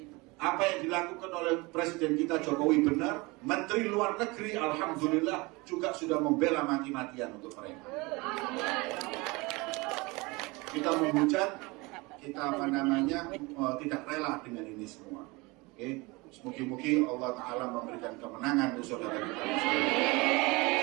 apa yang dilakukan oleh Presiden kita Jokowi benar. Menteri Luar Negeri alhamdulillah juga sudah membela mati-matian untuk mereka. Kita menghujat, kita tidak rela dengan ini semua. Oke, semoga Allah Ta'ala memberikan kemenangan untuk saudara kita.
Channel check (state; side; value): quieter; left; 24.9 dB